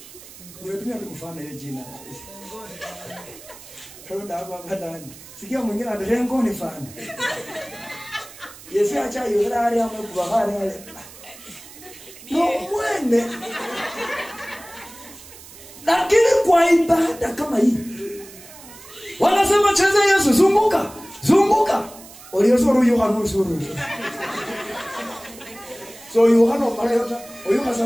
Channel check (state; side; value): noise; right; hiss, 18 dB below the sound